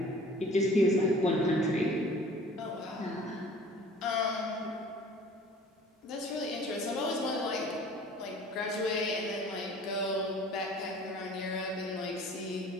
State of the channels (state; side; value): normal; both; correlation 0.48